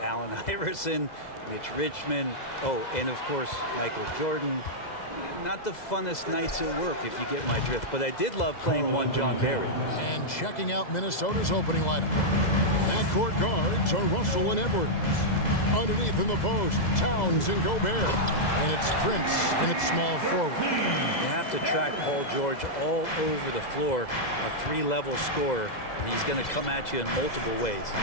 Iverson, Mitch Richmond, and of course, Michael Jordan, not the funnest nights at work, if you get my drift, but I did love playing one John Barry. And checking out Minnesota's opening lineup. Backcourt guards are Russell and Edwards. Underneath in the post, Towns and Gobert. And it's Prince in its small forward. You have to track Paul George all over the floor, a 3-level scorer, and he's going to come at you in multiple ways.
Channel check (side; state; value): right; late; 2.0 ms